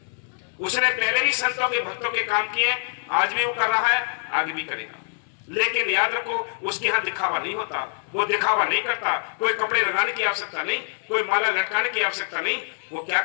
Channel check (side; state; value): right; silent; digital silence